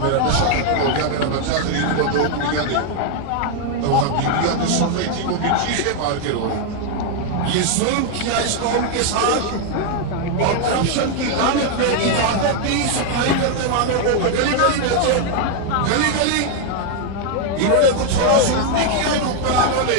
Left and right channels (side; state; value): both; different; correlation 0.00